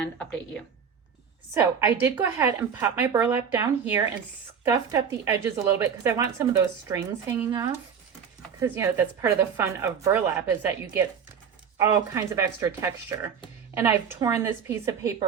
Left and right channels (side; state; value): left; quieter; 7.1 dB